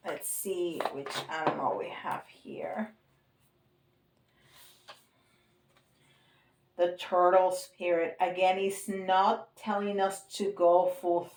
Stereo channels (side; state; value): both; identical; correlation 1.00